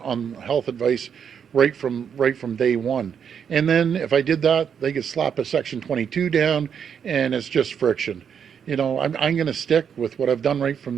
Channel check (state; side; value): quieter; left; 7.6 dB